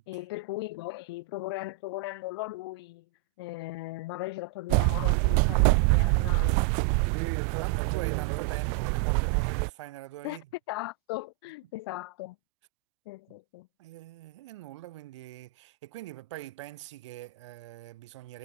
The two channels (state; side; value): quieter; left; 10.5 dB